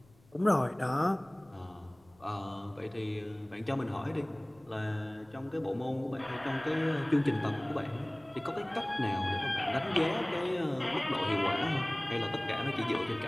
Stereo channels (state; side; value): noise; left; rumble, 29 dB below the sound